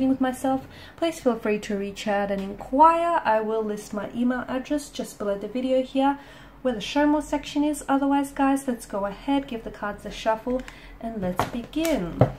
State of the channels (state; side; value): identical; both; correlation 1.00